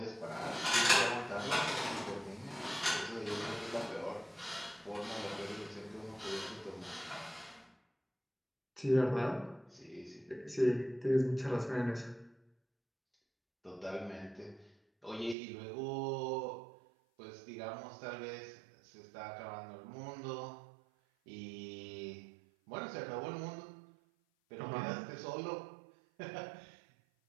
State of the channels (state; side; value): drops out; left; at 15.4 s